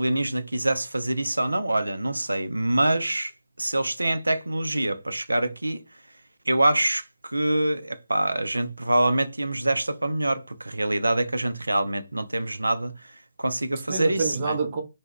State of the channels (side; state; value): both; inverted; correlation -0.95